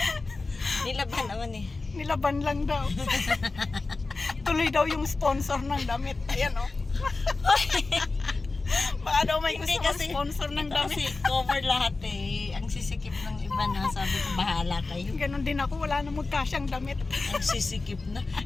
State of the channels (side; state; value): right; quieter; 3.6 dB